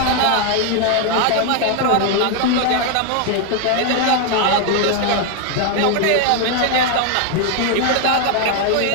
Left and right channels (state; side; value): different; both; correlation 0.01